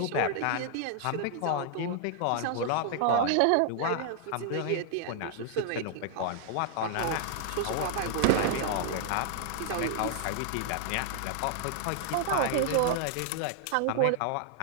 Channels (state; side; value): different; both; correlation -0.01